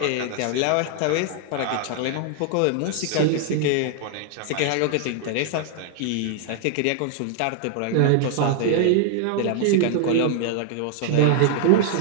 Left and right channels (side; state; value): both; different; correlation 0.00